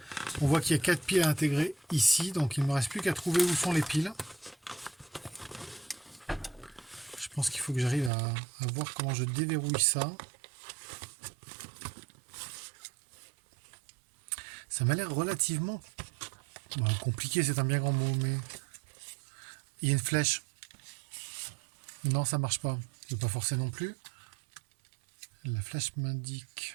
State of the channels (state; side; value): drops out; left; at 8.1 s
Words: On voit qu'il y a 4 piles à intégrer ici, donc il ne me reste plus qu'à trouver où sont les piles. Je pense qu'il faut que j'arrive à voir comment je déverrouille ça. Ça m'a l'air relativement compliqué, c'est un bien grand mot, mais il y a une flèche. Non, ça marche pas. Je ne vais pas forcer non plus. La flèche